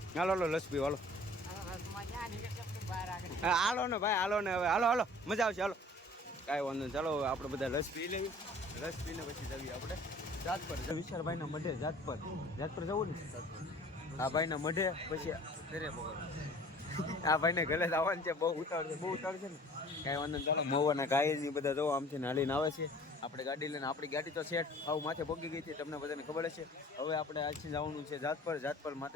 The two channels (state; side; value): normal; both; correlation 0.48